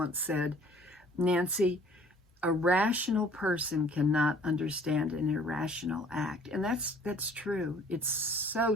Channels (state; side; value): normal; both; correlation 0.54